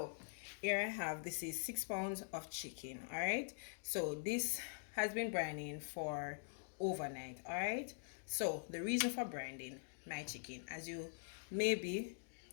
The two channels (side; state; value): right; silent; digital silence